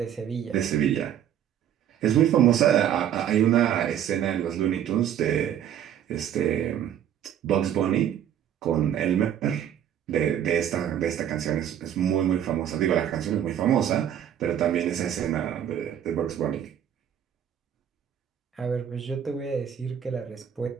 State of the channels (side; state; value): left; quieter; 10.0 dB